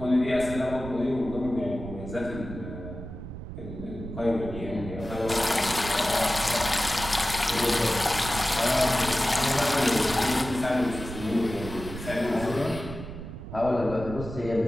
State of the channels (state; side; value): noise; right; rumble, 10 dB below the sound